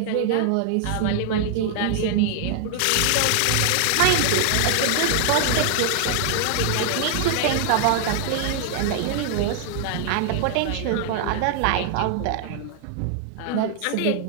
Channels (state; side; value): different; both; correlation 0.00